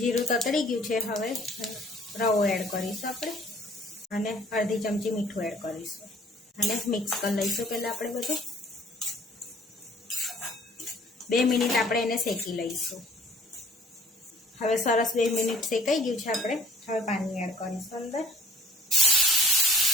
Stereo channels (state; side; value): normal; both; correlation 0.53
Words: ततड़ी गयुं छे। हवे रवो एड करीशुं आपणे अने अर्धी चमची मीठुं एड करीशुं अने मिक्स कर लईशुं। पहेला आपणे बधुं 2 मिनिट आपणे एने शेकी लईशुं। हवे सरस 2 मिनिट शेकाई गयुं छे। आपणे हवे पाणी एड करीशुं अंदर।